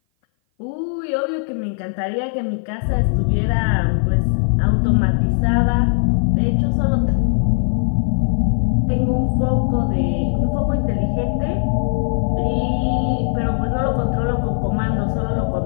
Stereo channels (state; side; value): silent; right; 57 dB below the other